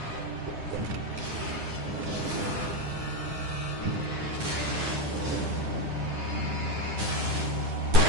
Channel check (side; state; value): left; late; 9.7 ms